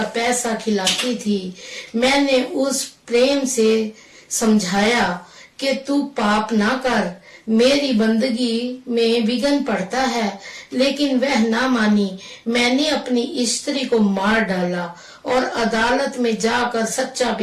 पैसा खिलाती थी। मैंने उस प्रेम से समझाया कि तू पाप ना कर, मेरी बंदगी में विघ्न पड़ता है, लेकिन वह ना मानी। मैंने अपनी स्त्री को मार डाला और अदालत में जाकर सच्चा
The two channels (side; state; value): both; identical; correlation 1.00